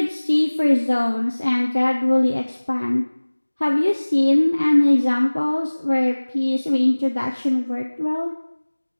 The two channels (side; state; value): both; inverted; correlation -1.00